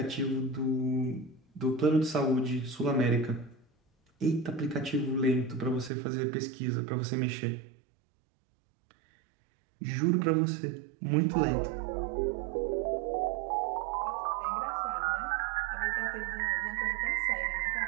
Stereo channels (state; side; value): drops out; left; at 5.9 s